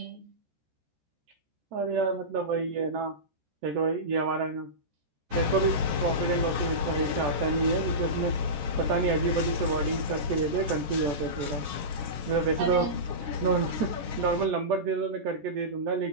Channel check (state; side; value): late; left; 14 ms